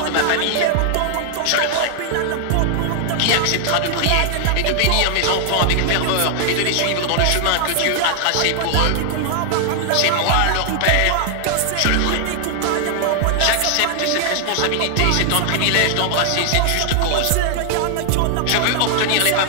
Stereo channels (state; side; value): different; both; correlation 0.00